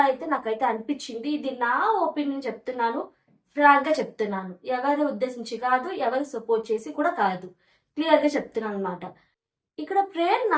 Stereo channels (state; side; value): identical; both; correlation 1.00